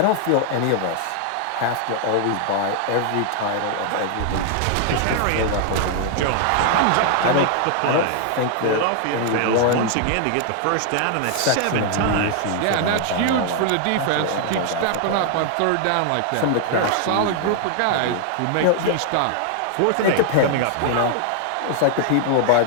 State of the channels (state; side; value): different; both; correlation 0.00